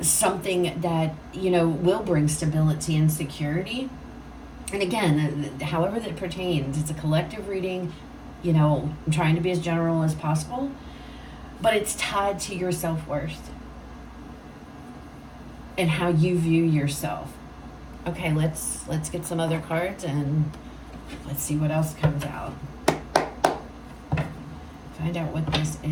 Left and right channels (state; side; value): identical; both; correlation 1.00